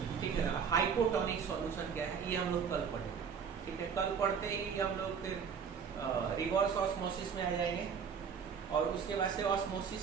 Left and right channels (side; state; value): left; quieter; 6.7 dB